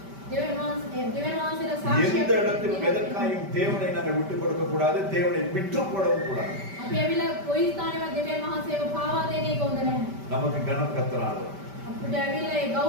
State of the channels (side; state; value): left; late; 5.1 ms